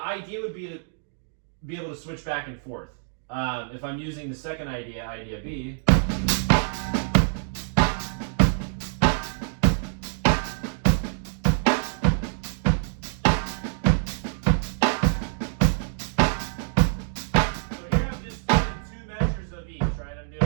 idea would be to be able to switch back and forth. If I'm using the second idea, idea B.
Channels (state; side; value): silent; left; digital silence